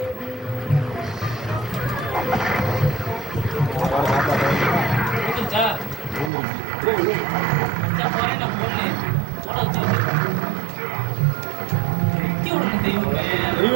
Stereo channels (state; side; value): drops out; left; at 6.3 s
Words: புரிஞ்சுச்சா? அச்சா போறேன் நான் போடல. போட வச்சு நித்தி விடணும் தெய்வமே.